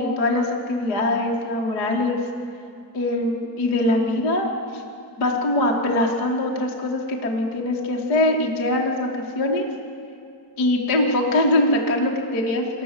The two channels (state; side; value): late; right; 4.8 ms